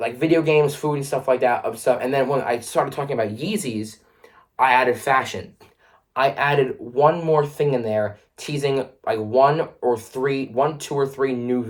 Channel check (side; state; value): both; identical; correlation 1.00